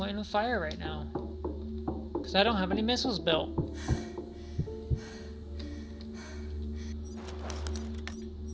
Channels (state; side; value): identical; both; correlation 1.00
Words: with fire right now. Because I don't have any missiles built.